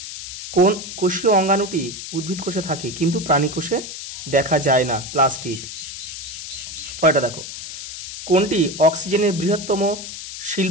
কোন কোষীয় অঙ্গাণুটি উদ্ভিদ কোষে থাকে কিন্তু প্রাণী কোষে দেখা যায় না? প্লাস্টিড। পরেরটা দেখো, কোনটি অক্সিজেনের বৃহত্তম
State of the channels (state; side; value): noise; left; hiss, 9 dB below the sound